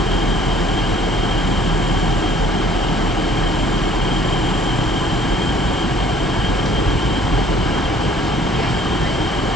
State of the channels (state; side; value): normal; both; correlation 0.57